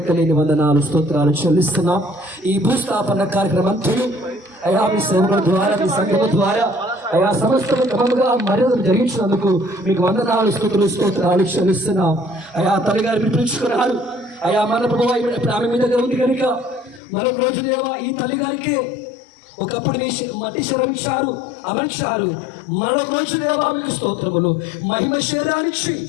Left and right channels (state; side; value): drops out; right; at 17.0 s